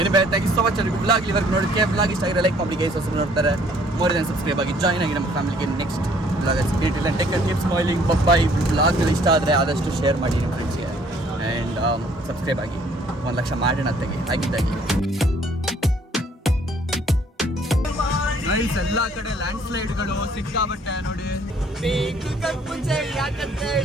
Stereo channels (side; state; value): both; normal; correlation 0.60